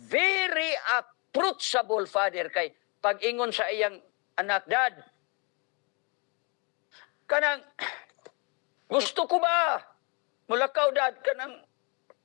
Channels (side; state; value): right; quieter; 32.1 dB